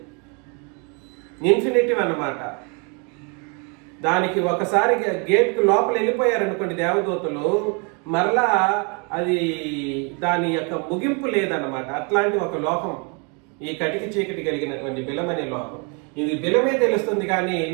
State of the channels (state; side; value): quieter; left; 34.8 dB